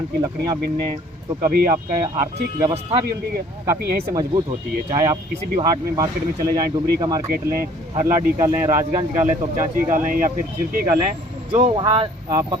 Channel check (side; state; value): both; normal; correlation 0.55